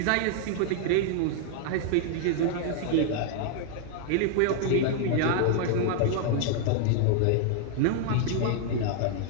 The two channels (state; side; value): different; both; correlation 0.00